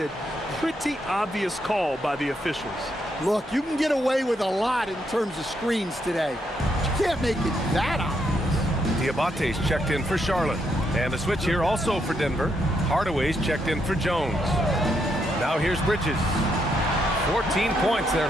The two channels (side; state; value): both; normal; correlation 0.78